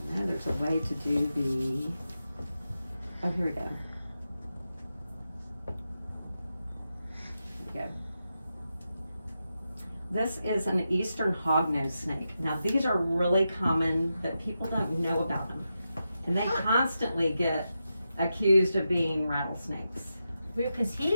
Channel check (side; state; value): both; inverted; correlation -0.89